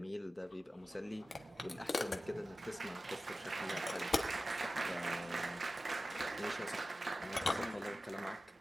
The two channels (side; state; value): both; normal; correlation 0.94